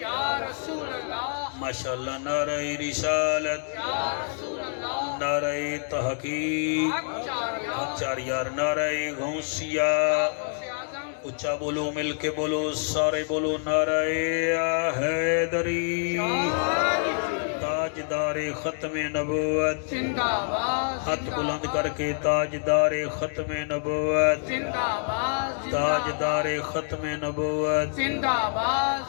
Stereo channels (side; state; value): right; silent; digital silence